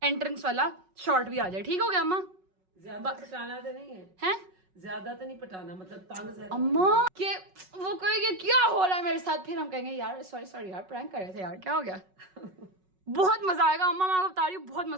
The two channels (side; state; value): left; late; 5.4 ms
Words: एंट्रेंस वाला शॉट भी आ जाए। ठीक हो गया अम्मा? ज्यादा पटाना तो नहीं है, हैं? ज्यादा तो नहीं पटाना, मतलब तंग ज्यादा। अम्मा के वो कहेंगे क्या हो रहा है मेरे साथ, फिर हम कहेंगे यार सॉरी यार प्रैंक कर रहे थे यार, क्या हो गया। बहुत मजा आएगा अम्मा, मैं आपको बता रही हूँ, बहुत